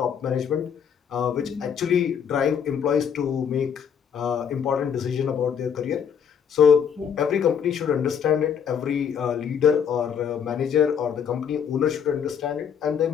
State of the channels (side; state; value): right; quieter; 7.6 dB